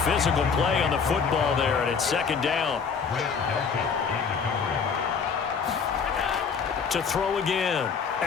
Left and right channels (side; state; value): right; quieter; 5.9 dB